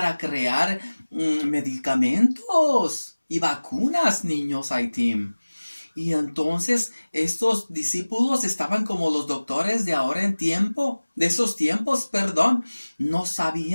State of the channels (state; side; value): inverted; both; correlation -1.00